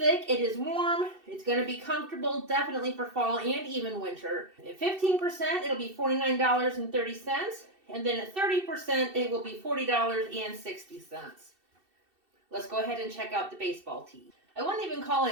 It is warm. It's going to be comfortable, definitely for fall and even winter. At 15%, it'll be $49.30. And then at 30%, it will be $40.60. Let's go ahead and check out the baseball tee. I wouldn't even call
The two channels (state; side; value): late; left; 2.7 ms